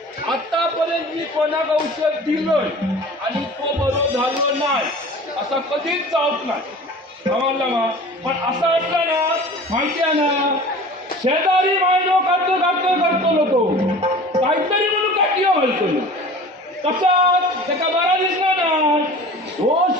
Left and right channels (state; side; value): normal; both; correlation 0.41